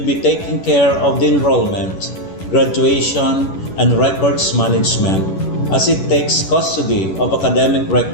be taking care of the enrollment, graduation, and records management as it takes custody of academic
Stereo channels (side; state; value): right; late; 11 ms